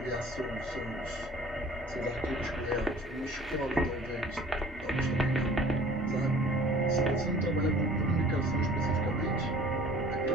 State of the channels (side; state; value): both; normal; correlation 0.49